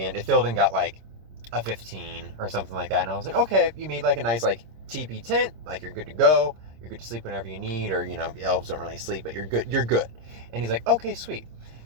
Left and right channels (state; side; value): late; left; 26 ms